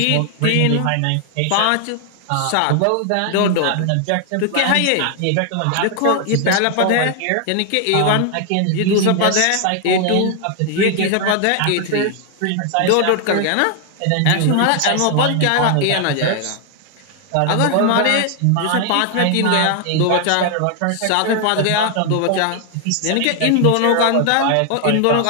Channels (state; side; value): different; both; correlation 0.00